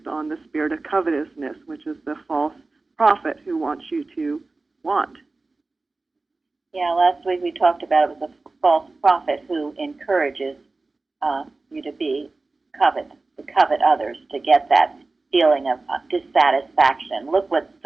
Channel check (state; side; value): quieter; left; 3.5 dB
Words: on the spirit of covetousness, which is the false prophet who wants you to want. Yeah, last week we talked about it was a false prophet who encourages you to covet others, to get that feeling of dissatisfaction. Look what